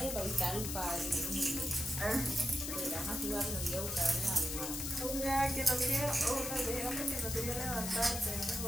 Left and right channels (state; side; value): noise; left; hiss, 4 dB below the sound